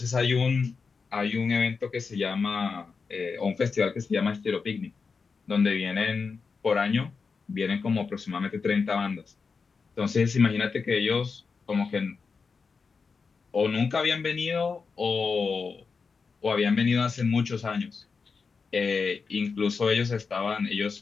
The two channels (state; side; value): quieter; right; 5.0 dB